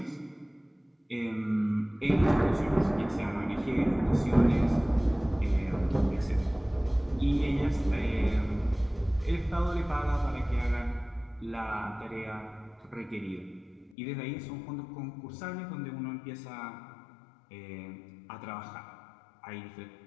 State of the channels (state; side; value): drops out; right; at 14.0 s